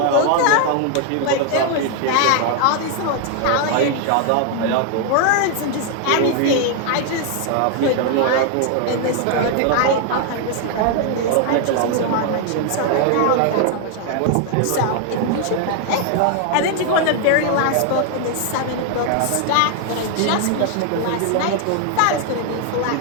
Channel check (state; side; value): different; both; correlation 0.00